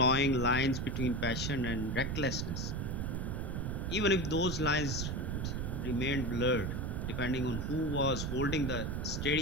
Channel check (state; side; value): noise; right; rumble, 2 dB below the sound